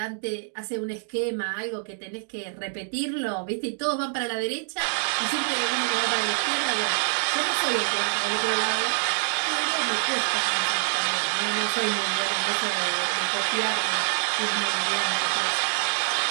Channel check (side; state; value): left; silent; digital silence